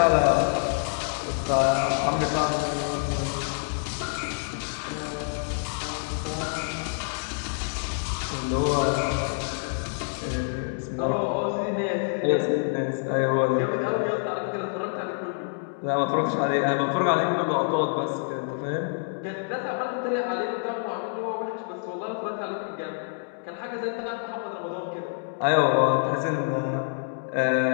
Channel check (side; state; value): right; silent; digital silence